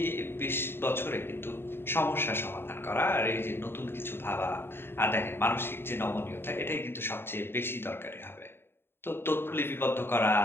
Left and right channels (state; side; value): late; right; 0.11 ms